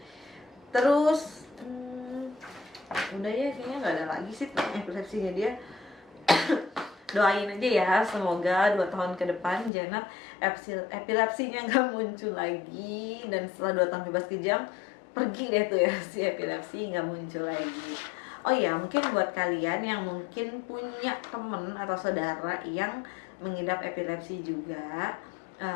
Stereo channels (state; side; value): drops out; right; at 9.7 s